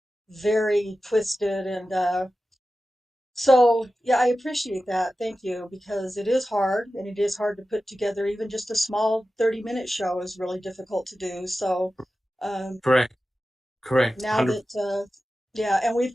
very twisted. And so, yeah, I appreciate that. Thank you, because it is hard, and it is hard to put together. Even just a small 30-minute show is really difficult to do. So, um, correct, correct, now 100. that, yeah, and we've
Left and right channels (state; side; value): normal; both; correlation 0.94